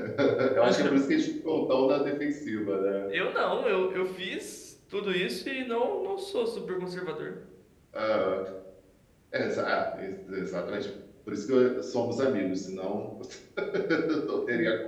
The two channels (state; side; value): identical; both; correlation 1.00